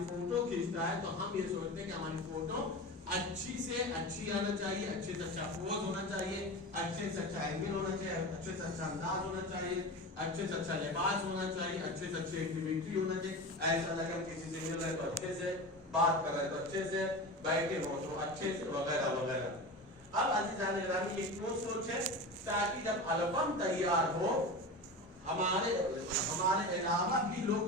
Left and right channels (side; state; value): both; normal; correlation 0.27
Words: فوٹو کھینچتا ہے تو ہم یہ سوچتے ہیں کہ ہماری فوٹو اچھی سے اچھی آنا چاہیے، اچھے سے اچھا پوز ہونا چاہیے، اچھے سے اچھا اینگل ہونا چاہیے، اچھے سے اچھا انداز ہونا چاہیے، اچھے سے اچھا لباس ہونا چاہیے، اچھے سے اچھی ایکٹیویٹی ہونا چاہیے، ایسا لگا کسی سے مل رہے تو اچھے سے بات کر رہے تو اچھے سے بیٹھے ہو تو اچھے سے وغیرہ وغیرہ۔ اب عزیزان گرامی یہ کیوں سوچ ہے تاکہ جب البم تیار ہو ہمارے علاوہ بھی